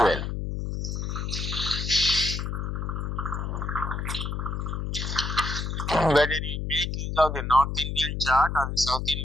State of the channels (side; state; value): left; noise; hum, 3 dB below the sound